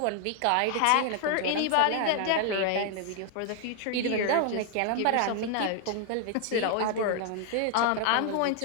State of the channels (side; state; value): both; different; correlation 0.00